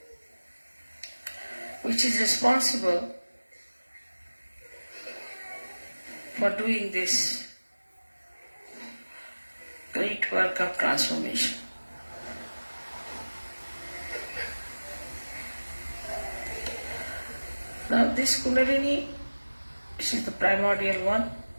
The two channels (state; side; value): inverted; both; correlation -1.00